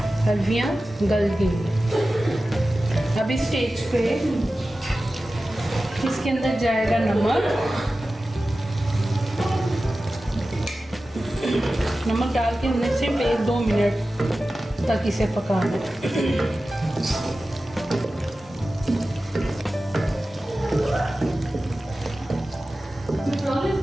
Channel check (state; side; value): normal; both; correlation 0.95